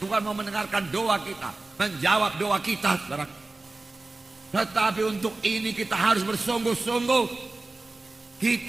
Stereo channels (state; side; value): quieter; left; 3.2 dB